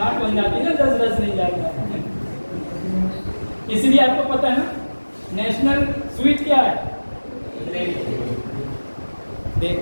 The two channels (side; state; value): both; inverted; correlation -1.00